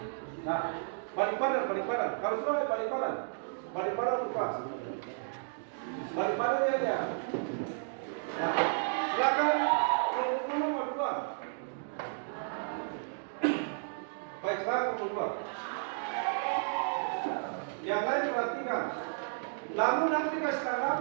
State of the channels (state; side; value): silent; left; digital silence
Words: Nah, balik badan. Kalau sudah balik badan lepas. Balik badan ya dia. Nah, silakan kelompok dua. Baik, sekarang kelompok dua. Yang lain perhatikan. Lalu nanti kasih